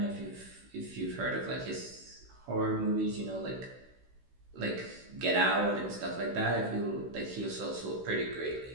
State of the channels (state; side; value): late; left; 16 ms